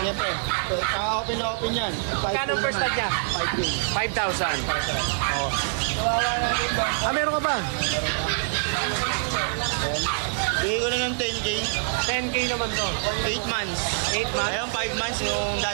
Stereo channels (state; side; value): silent; left; 62 dB below the other